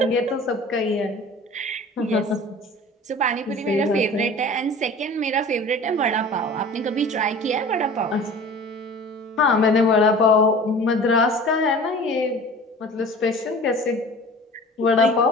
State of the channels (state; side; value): normal; both; correlation 0.42